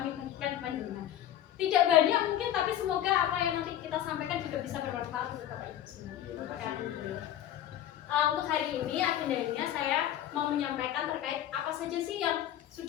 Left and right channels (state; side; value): quieter; right; 11.7 dB